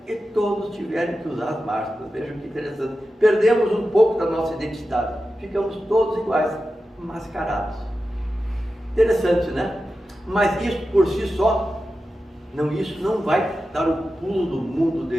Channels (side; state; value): both; normal; correlation 0.92